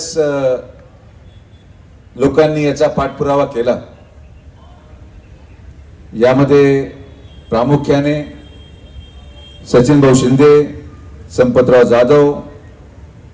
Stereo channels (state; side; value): identical; both; correlation 1.00